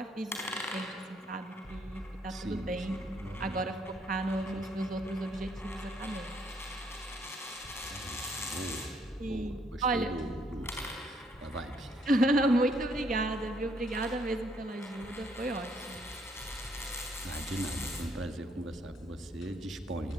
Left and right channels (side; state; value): both; normal; correlation 0.68